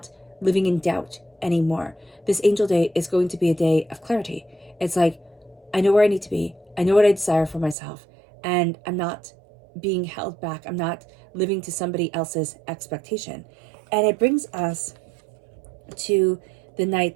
living in doubt anymore. This Angel Day is going to be a day of clarity. It's like I know where I need to be. I know what I desire for myself, and I'm not being held back. I'm not living to somebody else's expectation. And it brings us to the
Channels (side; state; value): left; drops out; at 7.8 s